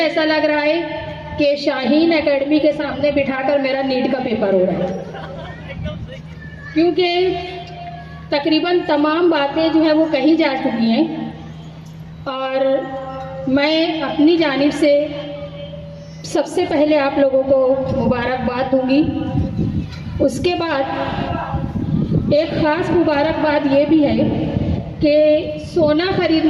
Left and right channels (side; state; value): both; identical; correlation 1.00